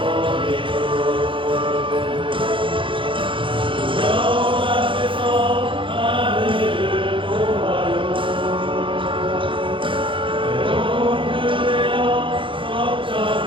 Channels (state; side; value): late; left; 0.25 ms